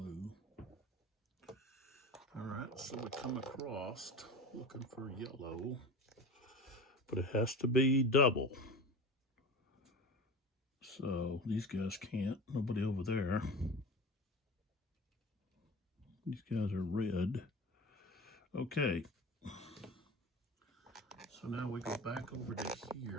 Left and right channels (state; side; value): normal; both; correlation 0.32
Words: All right, so we come across looking for yellow, but it has to be double. So these guys can't, nobody over there. These guys are red. Okay. So now we go back over to